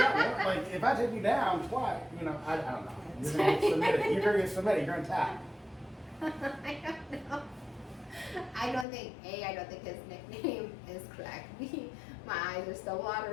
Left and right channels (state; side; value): drops out; right; at 8.8 s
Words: out. Like if I take you down twice, I don't know. You're gonna get submitted. You're gonna get submitted. You're gonna tap. I don't know. I don't think his nickname is correct. B, my eyes are still